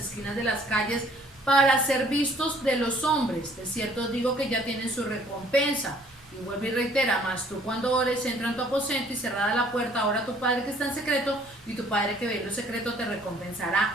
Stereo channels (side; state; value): right; noise; rumble, 28 dB below the sound